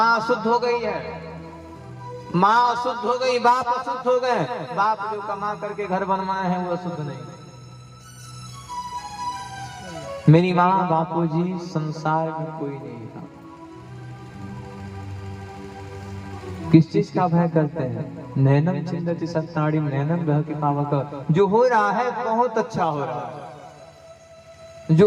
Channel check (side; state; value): both; identical; correlation 1.00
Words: अशुद्ध हो गई है, माँ अशुद्ध हो गई, बाप अशुद्ध हो गए। बाप जो कमा करके घर बनवाए हैं वो अशुद्ध नहीं। मेरी माँ बापूजी संसार में कोई नहीं था। किस चीज का भय करते हैं? नैनम चिंदति सत्ताड़िम नैनम ग्रह के पावक। जो हो रहा है बहुत अच्छा हो रहा है,